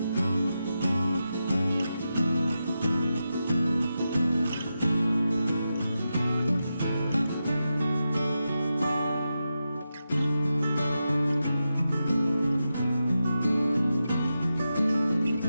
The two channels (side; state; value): both; inverted; correlation -0.89